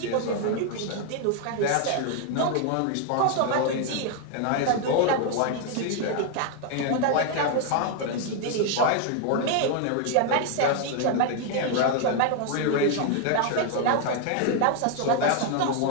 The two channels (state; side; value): different; both; correlation 0.00